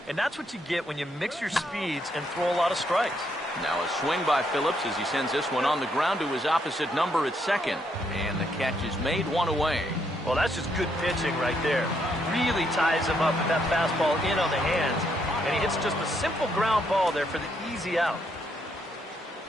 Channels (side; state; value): both; normal; correlation 0.75